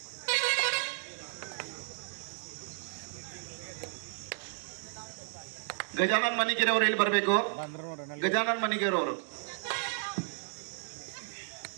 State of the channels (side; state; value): left; silent; digital silence